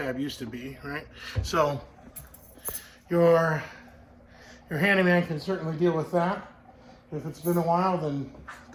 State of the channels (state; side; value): identical; both; correlation 1.00